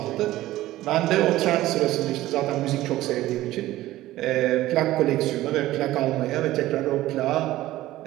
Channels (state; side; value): quieter; left; 15.8 dB